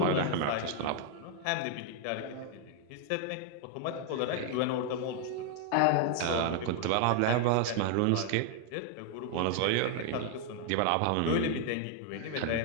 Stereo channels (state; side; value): different; both; correlation 0.00